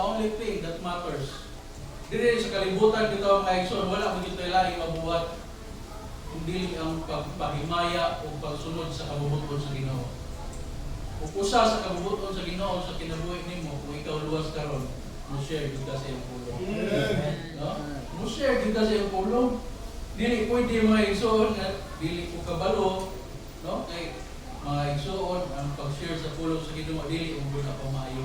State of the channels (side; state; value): both; identical; correlation 1.00